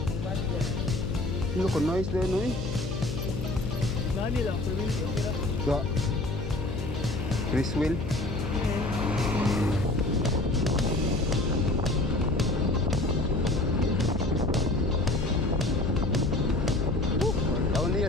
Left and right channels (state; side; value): noise; left; hum, 5 dB below the sound